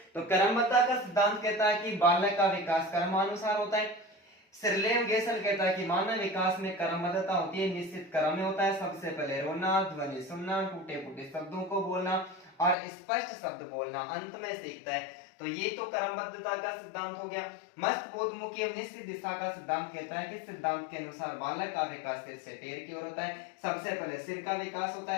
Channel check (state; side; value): drops out; right; at 12.8 s